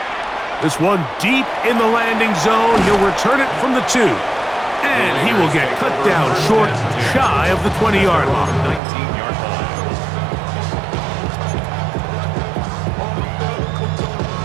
This one deep in the landing zone. He'll return it from the 2. And he will get cut down short, shy of the 20-yard line. 19-yard line.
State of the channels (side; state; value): left; drops out; at 8.8 s